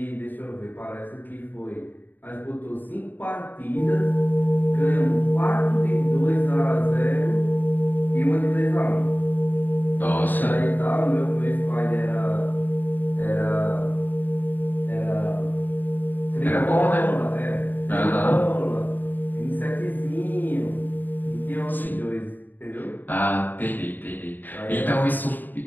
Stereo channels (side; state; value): right; late; 0.089 ms